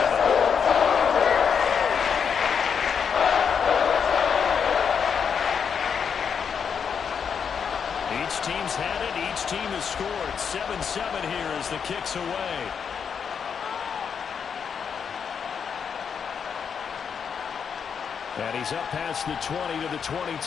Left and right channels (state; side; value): quieter; right; 6.9 dB